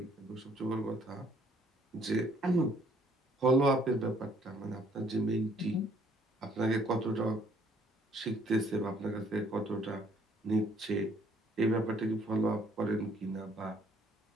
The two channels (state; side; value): normal; both; correlation 0.63